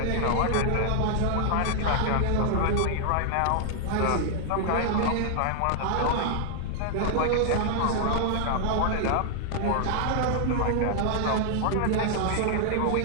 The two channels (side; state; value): both; different; correlation -0.01